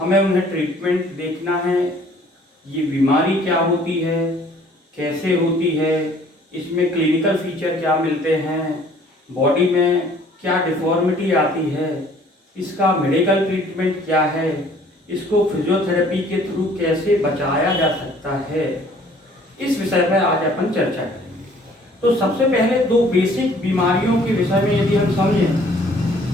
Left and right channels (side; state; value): both; normal; correlation 0.56